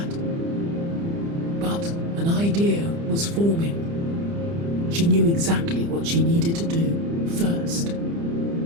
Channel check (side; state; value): left; late; 30 ms